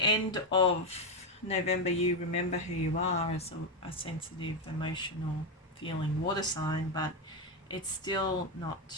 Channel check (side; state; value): both; normal; correlation 0.08